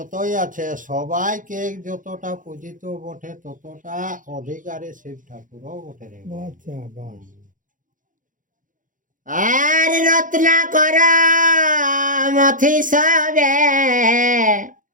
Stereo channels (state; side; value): late; left; 0.38 ms